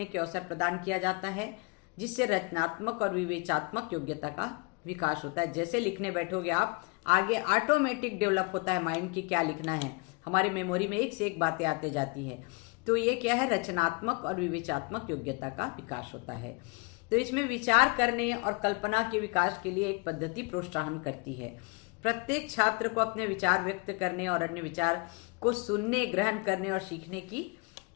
के अवसर प्रदान किया जाता है, जिससे रचनात्मक और विवेचनात्मक योग्यता का विकास होता है। जैसे लिखने बैठोगे आप, आगे ऑटोमेटिक डेवलप होता है माइंड की क्या लिखना है, हमारी मेमोरी में एक से एक बातें आते जाती है। तो ये क्या है? रचनात्मक और विवेचनात्मक योग्यता का विकास होता है। तो इसमें विचार करने और कल्पना के विकास के लिए एक पद्धति प्रोत्साहन करती है। प्रत्येक छात्र को अपने विचार व्यक्त करने और अन्य विचार को सुनने, ग्रहण करने और सीखने की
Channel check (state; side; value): quieter; right; 30.0 dB